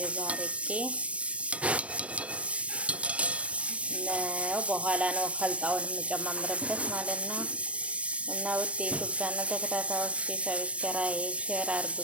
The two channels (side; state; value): left; late; 0.063 ms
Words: አርጌ ነው። በኋላ ነው ከልጣውን የምጨማምርበት ማለት ነው። እና ውድ የዩቲዩብ ቻናል ተከታታዮች ሰብስክራይብ፣ ሼር አድርጉ